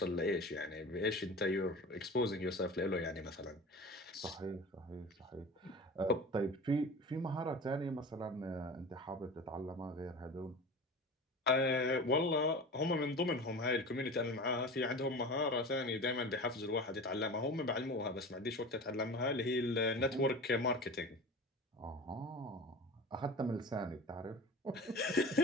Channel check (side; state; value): both; normal; correlation 0.35